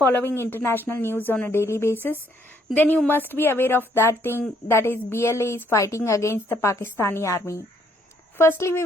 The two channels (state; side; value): normal; both; correlation 0.68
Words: international news on a daily basis, then you must be aware of that thing, that is BLA is fighting against the Pakistani army. Firstly, we